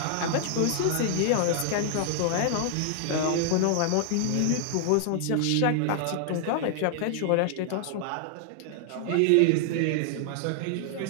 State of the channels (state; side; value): different; both; correlation 0.00